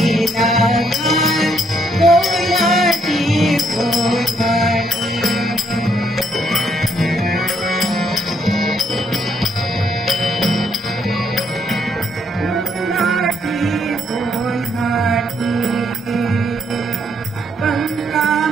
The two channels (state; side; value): normal; both; correlation 0.71